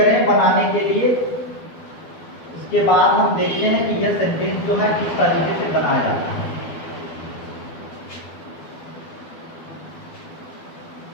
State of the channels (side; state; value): right; late; 12 ms